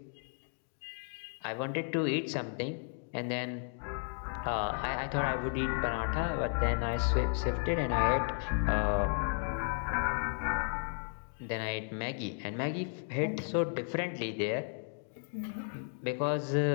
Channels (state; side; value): silent; right; 55 dB below the other